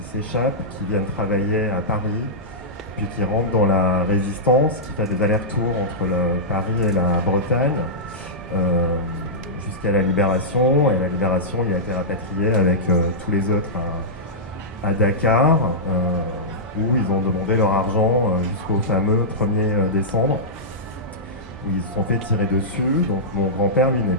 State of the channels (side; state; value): both; normal; correlation -0.14